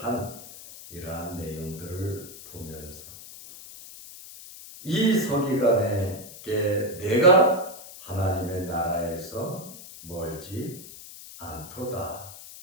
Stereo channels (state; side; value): noise; left; hiss, 15 dB below the sound